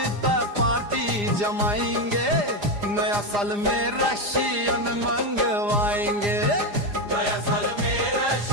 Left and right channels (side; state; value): left; late; 4.9 ms